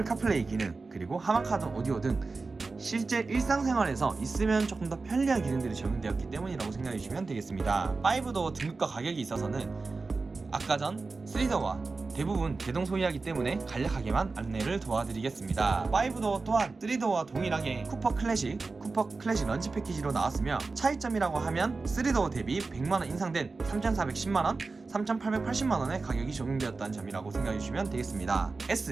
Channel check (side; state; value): left; quieter; 4.0 dB